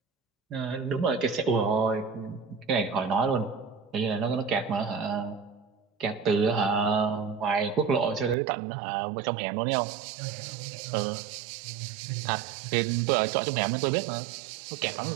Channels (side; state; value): left; drops out; at 8.3 s